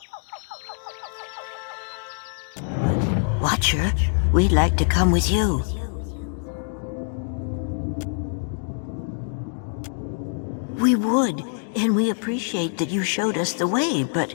Watcher, we'd like to come with you. We would, and we appreciate that you showed us the way, but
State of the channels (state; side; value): silent; right; digital silence